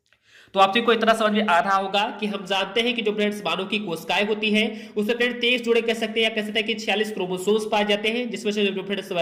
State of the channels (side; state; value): both; identical; correlation 1.00